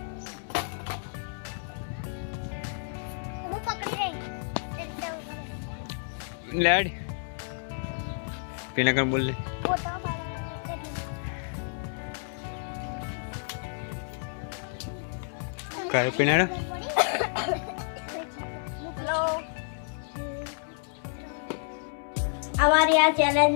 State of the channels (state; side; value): silent; right; 58 dB below the other